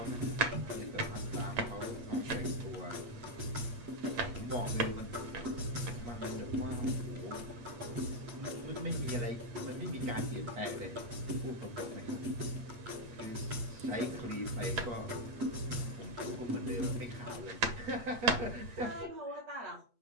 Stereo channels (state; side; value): late; left; 8.4 ms